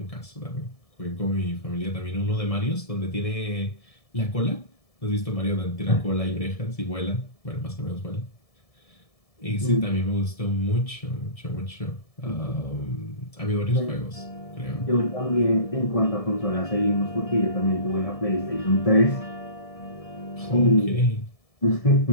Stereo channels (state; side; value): late; right; 1.7 ms